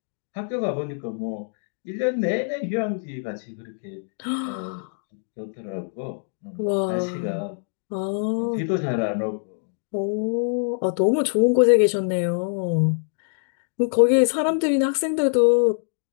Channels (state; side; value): silent; right; digital silence